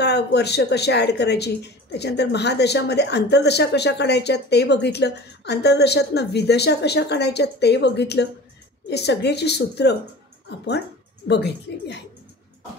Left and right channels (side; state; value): both; normal; correlation 0.39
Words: वर्ष कशा ॲड करायची, त्याच्यानंतर महादशामध्ये अंतर्दशा कशा काढायच्या ते बघितलं, अंतर्दशातनं विदशा कशा काढायच्या ते बघितलं. हे सगळ्याची सूत्र आपण बघितलेली आहे.